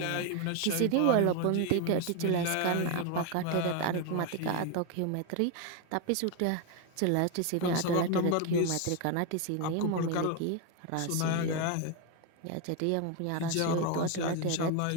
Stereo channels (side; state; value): both; different; correlation 0.02